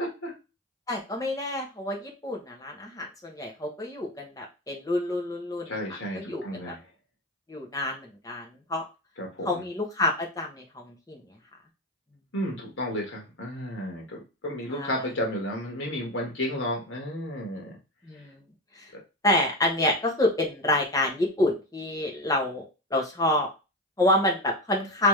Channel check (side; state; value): both; normal; correlation 0.19